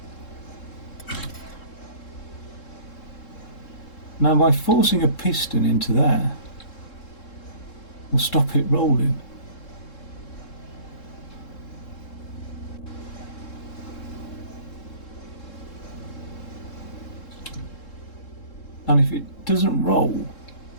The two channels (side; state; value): right; late; 3.7 ms